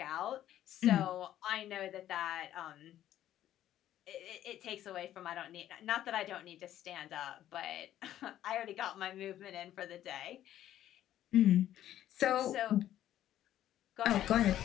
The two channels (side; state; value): right; quieter; 12.2 dB